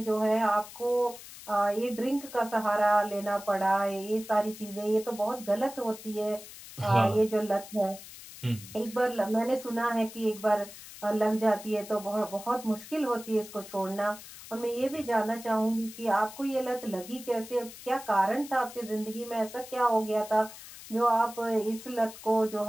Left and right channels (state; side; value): noise; left; hiss, 15 dB below the sound